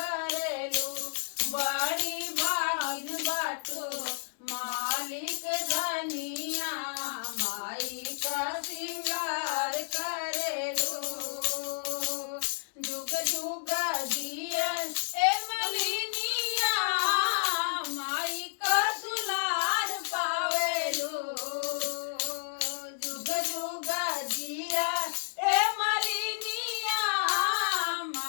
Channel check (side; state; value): right; silent; digital silence